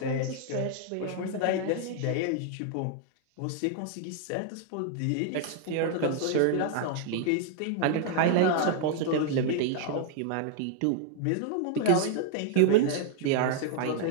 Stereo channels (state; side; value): different; both; correlation 0.00